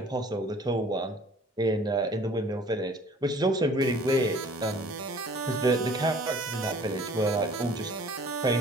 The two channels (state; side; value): normal; both; correlation 0.51